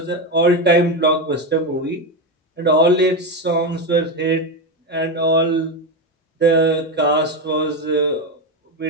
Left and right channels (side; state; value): both; normal; correlation 0.13